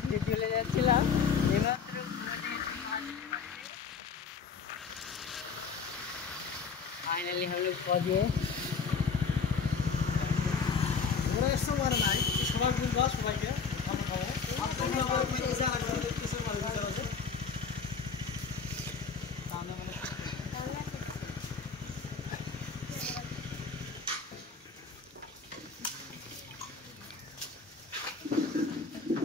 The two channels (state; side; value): quieter; right; 5.6 dB